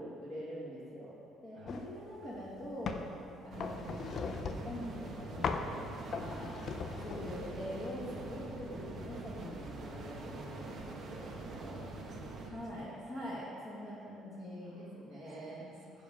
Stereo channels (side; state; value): both; normal; correlation 0.68